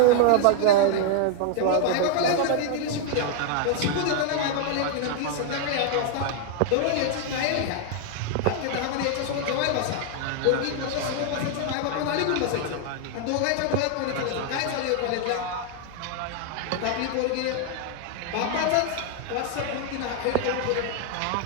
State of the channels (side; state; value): both; different; correlation 0.00